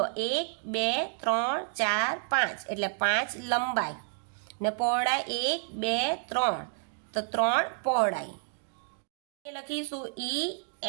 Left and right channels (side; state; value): left; silent; digital silence